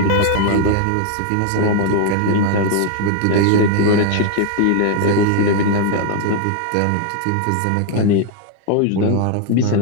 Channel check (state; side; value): different; both; correlation 0.00